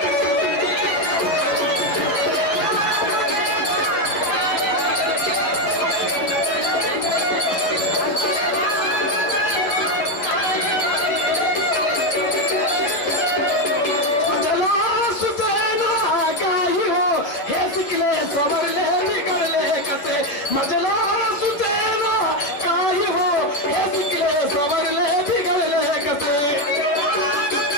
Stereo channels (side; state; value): right; late; 11 ms